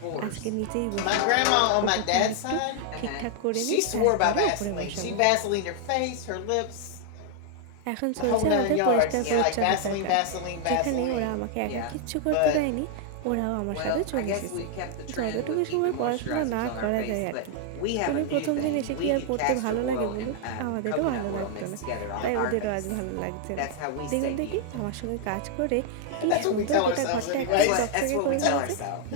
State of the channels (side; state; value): both; different; correlation 0.00